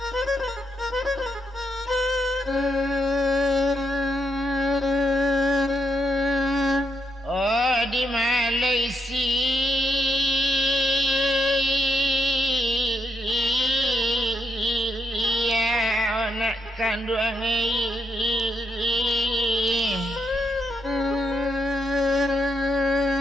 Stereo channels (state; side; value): normal; both; correlation 0.78